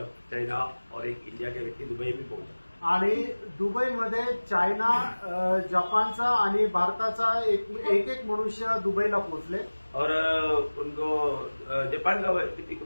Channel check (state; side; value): inverted; both; correlation -1.00